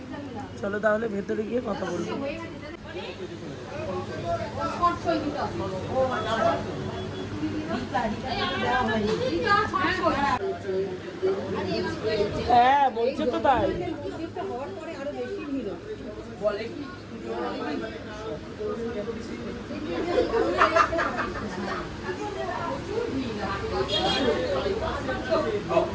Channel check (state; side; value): identical; both; correlation 1.00